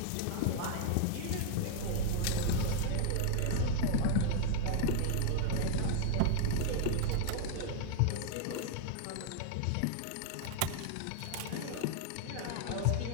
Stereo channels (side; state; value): both; different; correlation 0.00